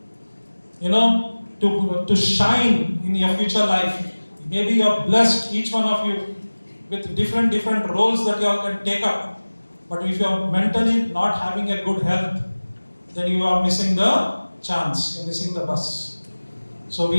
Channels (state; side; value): inverted; both; correlation -1.00